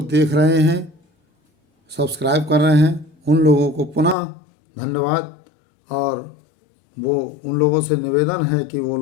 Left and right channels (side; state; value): right; drops out; at 4.2 s